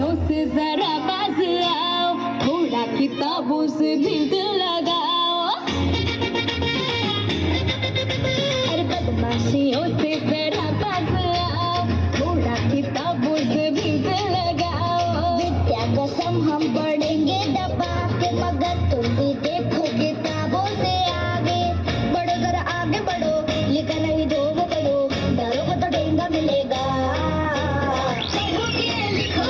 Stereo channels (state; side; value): identical; both; correlation 1.00